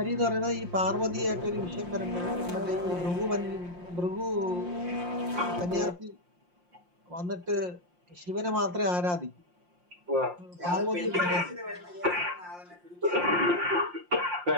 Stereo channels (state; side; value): late; left; 5.7 ms